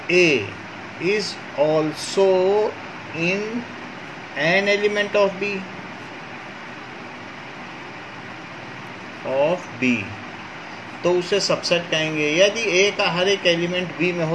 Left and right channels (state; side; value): identical; both; correlation 1.00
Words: A is also in an element of B. तो उसे सबसेट कहेंगे। यदि A का हर एक एलिमेंट B में